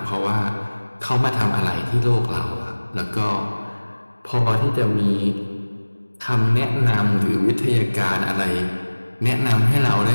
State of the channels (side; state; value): both; inverted; correlation -1.00